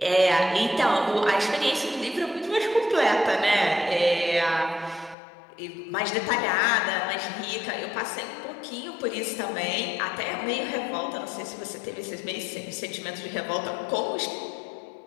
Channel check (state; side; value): drops out; right; at 5.2 s